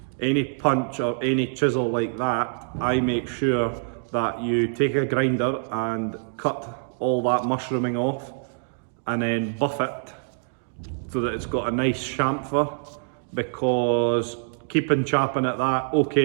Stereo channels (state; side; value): silent; left; digital silence